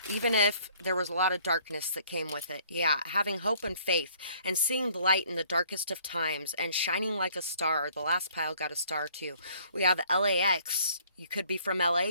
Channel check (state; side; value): inverted; both; correlation -0.59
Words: Even if there was a lot of darkness that came with it. Yeah, having hope and faith and seeing the light in the darkest of times and shining like a star. The last pile got a star too. We have LAX. You could be from LA.